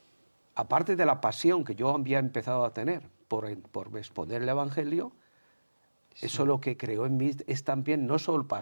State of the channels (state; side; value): inverted; both; correlation -1.00